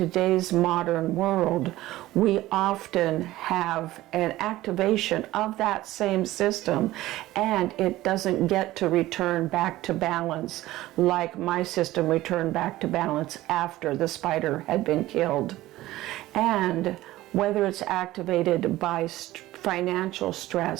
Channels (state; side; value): quieter; left; 16.5 dB